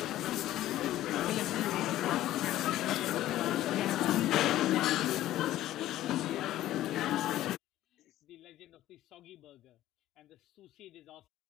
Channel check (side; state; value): right; quieter; 14.1 dB